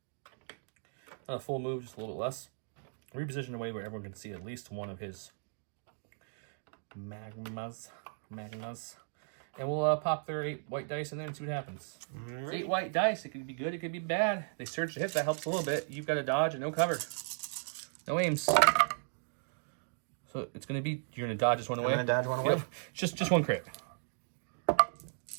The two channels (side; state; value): left; silent; digital silence